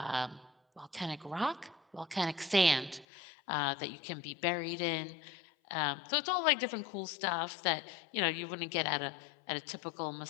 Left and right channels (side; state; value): right; drops out; at 3.1 s